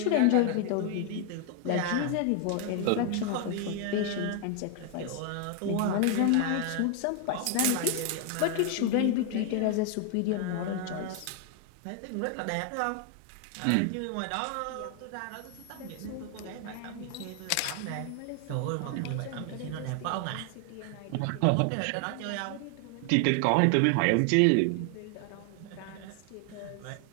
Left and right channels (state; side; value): different; both; correlation 0.00